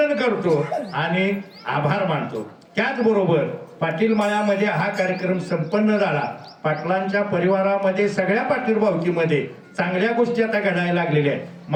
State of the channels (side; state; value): both; identical; correlation 1.00